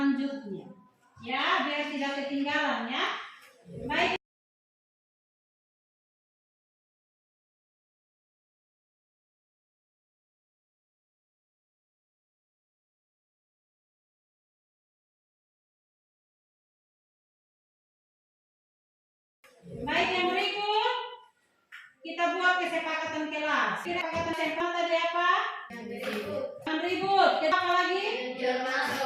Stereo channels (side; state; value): both; identical; correlation 1.00